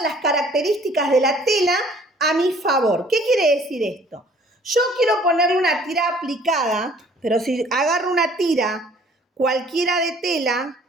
las características de la tela a mi favor. ¿Qué quiere decir esto? Yo quiero ponerle una tira aplicada, pero si agarro una tira cualquiera de tela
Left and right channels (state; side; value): normal; both; correlation 0.55